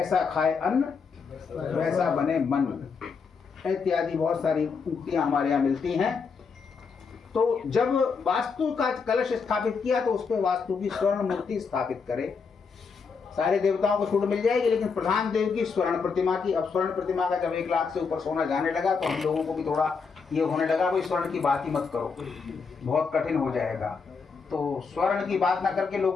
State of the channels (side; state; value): right; quieter; 5.3 dB